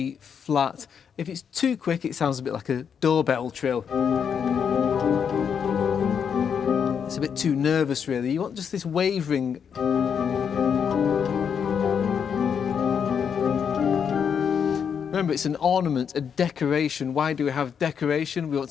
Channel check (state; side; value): quieter; right; 7.3 dB